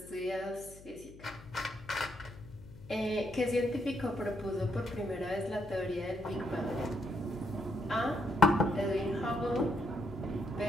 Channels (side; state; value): left; noise; hum, 19 dB below the sound